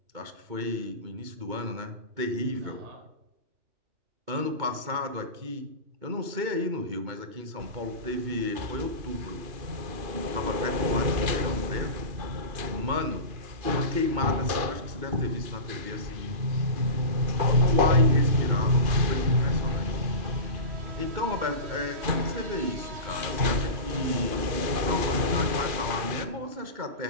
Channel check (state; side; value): late; left; 2.5 ms